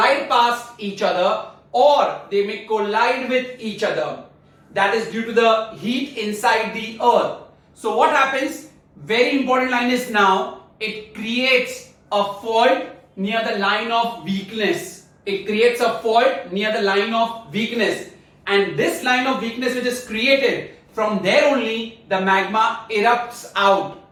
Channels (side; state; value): both; identical; correlation 1.00